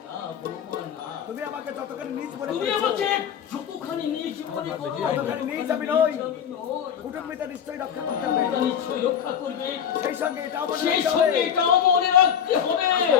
না বৌমা না, তুমি আমাকে যতখানি নিজ মনে তুমি করেছো, আমাকে যতখানি নিজ মনে করো, ততখানি নিজ আমি নই। আমি নই। কুটুম্বিতা নিশ্চয়ই রক্ষা করতে হবে। তোমরা নিশ্চয়ই রক্ষা করবে, সেই সঙ্গে এটাও মনে সেই রাখতে সঙ্গে হবে, এটাও মনে রাখতে হবে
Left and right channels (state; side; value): quieter; right; 8.5 dB